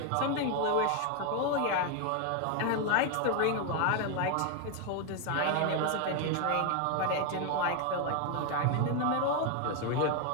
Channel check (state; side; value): different; both; correlation 0.01